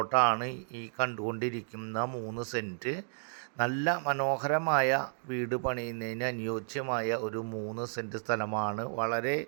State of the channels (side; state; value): left; silent; digital silence